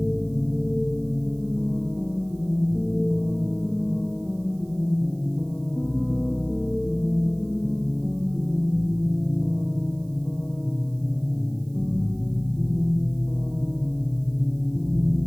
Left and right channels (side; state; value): right; noise; hiss, 30 dB below the sound